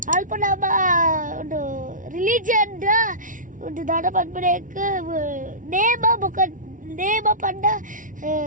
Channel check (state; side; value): late; left; 0.38 ms